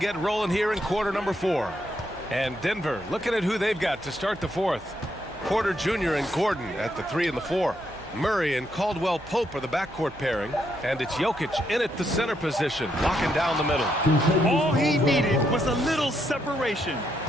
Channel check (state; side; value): noise; right; hum, 22 dB below the sound